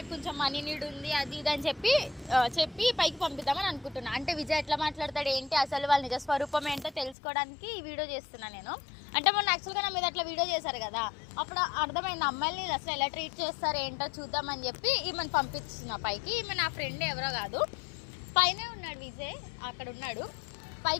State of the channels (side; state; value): right; drops out; at 7.2 s